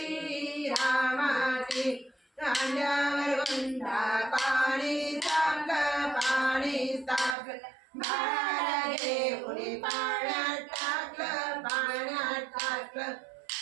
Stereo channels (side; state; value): left; drops out; at 7.4 s